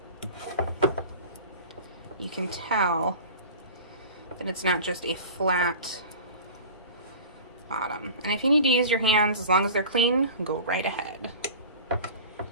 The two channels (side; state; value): both; inverted; correlation -0.38